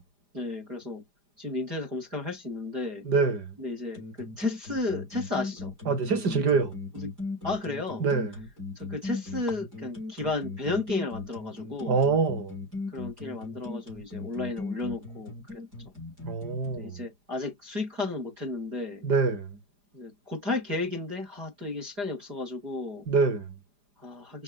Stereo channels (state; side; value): late; left; 4.9 ms